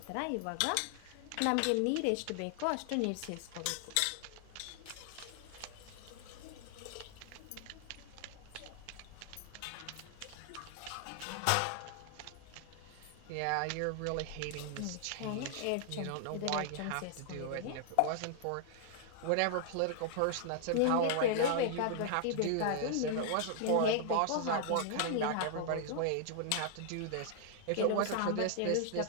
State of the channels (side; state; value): both; different; correlation 0.00